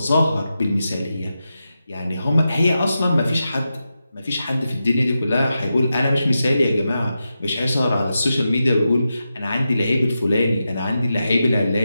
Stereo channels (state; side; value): inverted; both; correlation -0.89